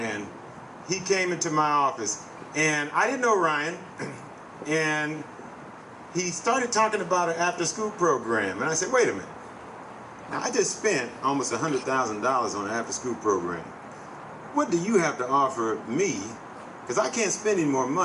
he came into my office, and I didn't know Ryan, and he started talking about an after-school program, and I said, wait a minute. Now, I just spent almost $100,000 on an after-school program. What do you have to offer me? Because I can't spend any more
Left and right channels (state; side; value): identical; both; correlation 1.00